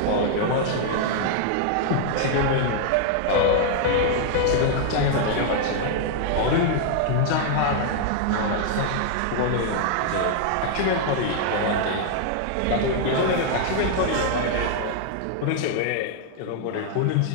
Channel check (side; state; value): both; different; correlation -0.01